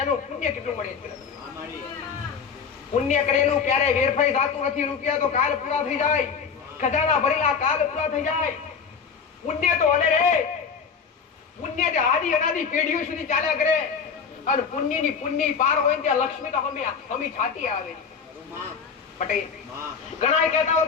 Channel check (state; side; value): quieter; right; 6.1 dB